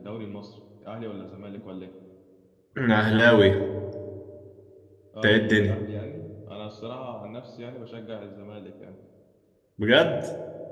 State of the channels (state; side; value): identical; both; correlation 1.00